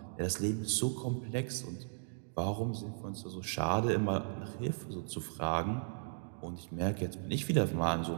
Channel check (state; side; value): silent; left; digital silence